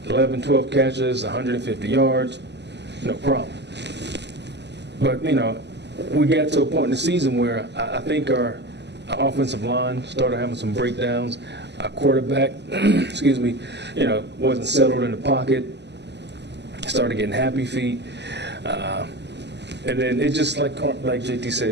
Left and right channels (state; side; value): late; left; 0.50 ms